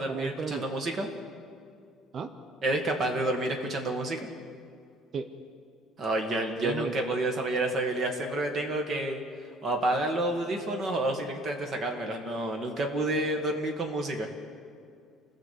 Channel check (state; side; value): normal; both; correlation 0.54